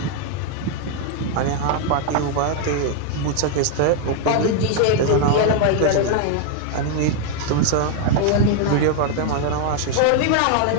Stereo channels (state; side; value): different; both; correlation 0.00